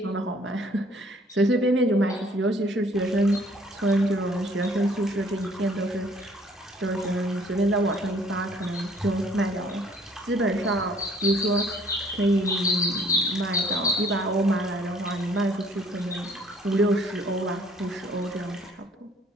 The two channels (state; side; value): normal; both; correlation 0.58